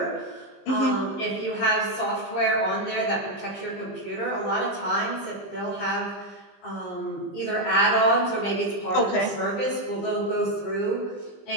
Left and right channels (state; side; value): late; right; 20 ms